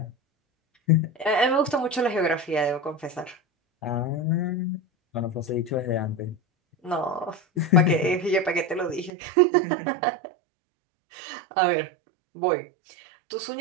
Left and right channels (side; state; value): left; drops out; at 9.1 s